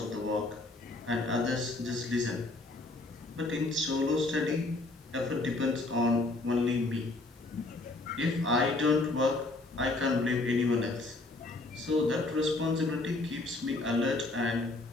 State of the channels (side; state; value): right; quieter; 3.0 dB